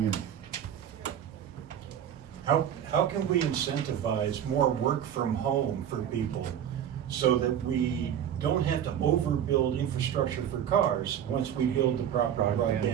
How can we incentivize more work from home for people so that we don't have to overbuild infrastructure for cars once we build the proper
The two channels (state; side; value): quieter; left; 9.7 dB